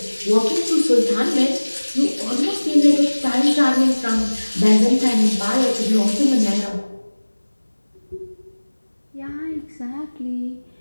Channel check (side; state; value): both; inverted; correlation -1.00